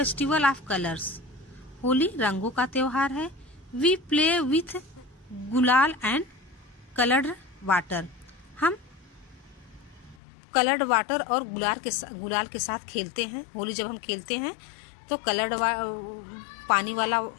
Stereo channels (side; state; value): right; drops out; at 10.2 s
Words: of colours. Holi रंगों का त्योहार है. वी प्ले विथ गुलाल एंड कलर्ड वाटर. हम कलर्ड वाटर और गुलाल के साथ खेलते हैं. होली जब हम खेलते हैं तो कलर्ड पानी वाला